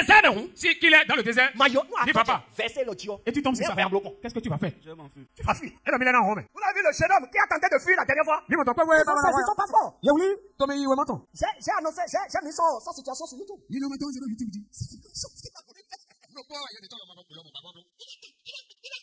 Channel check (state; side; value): identical; both; correlation 1.00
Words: si qu'il est dans le désert, dis papa. Et tu tombes sur ça. Qu'est-ce que tu vas faire? Je m'en fous. Tu vas fuir. Et le millénaire en Rome. Vous avez vu le jeune homme qui a tenté de fuir la dernière fois? Ils sont pas forts. J'ai annoncé, j'ai mis son situation sur YouTube. La